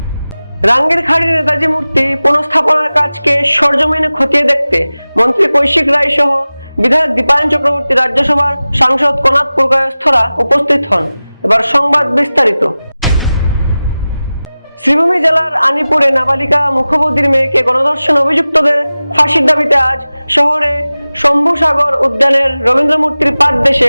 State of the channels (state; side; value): inverted; both; correlation -0.97